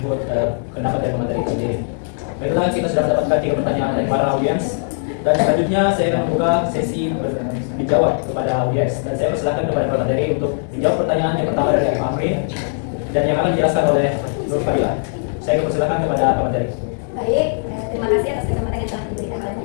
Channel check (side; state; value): right; silent; digital silence